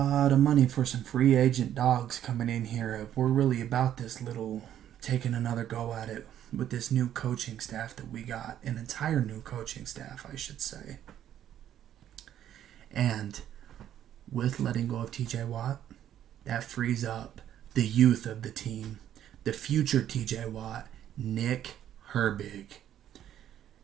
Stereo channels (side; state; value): left; quieter; 10.9 dB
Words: of money for some free agent dogs coming in here. We're really about this little, taking another go at it with this new coaching staff that we got. An entire new coaching staff, I should say. And with letting go of TJ Watt, that frees up the youth of the team, the future TJ Watt, Nick Herbig.